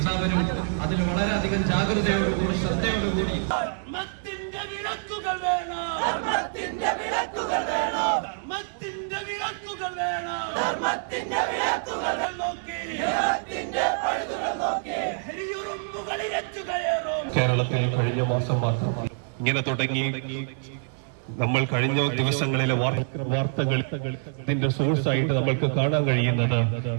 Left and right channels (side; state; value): left; silent; 61 dB below the other